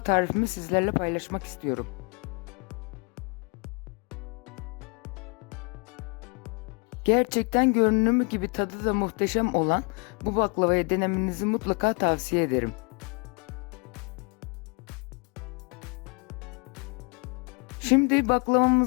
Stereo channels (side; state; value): right; quieter; 34.3 dB